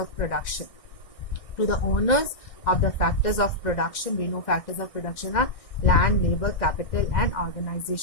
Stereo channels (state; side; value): late; right; 1.6 ms